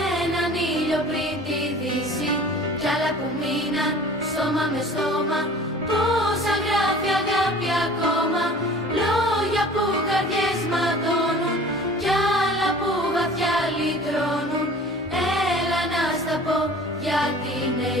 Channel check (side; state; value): both; normal; correlation 0.45